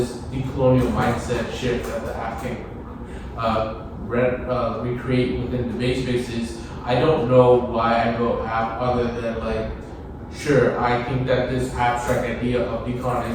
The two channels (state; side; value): identical; both; correlation 1.00